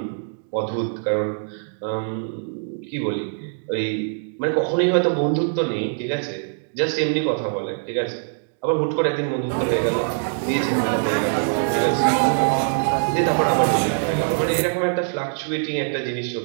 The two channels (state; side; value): silent; left; digital silence